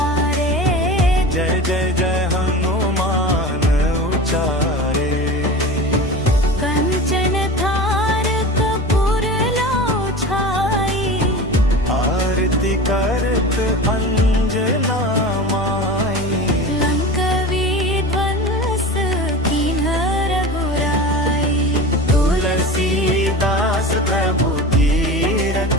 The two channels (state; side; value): normal; both; correlation 0.32